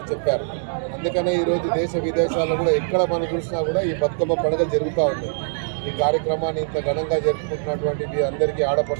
చెప్పారు. అందుకనే ఈరోజు దేశ విదేశాల్లో కూడా ఎక్కడ మనం చూసినా కూడా ఈ బతుకమ్మ పండుగ జరుగుతూ ఉంది. ఈ కార్యక్రమాన్ని ఇంత ఘనంగా జరుపుకుంటున్నటువంటి మీ అందరికీ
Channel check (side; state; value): left; silent; digital silence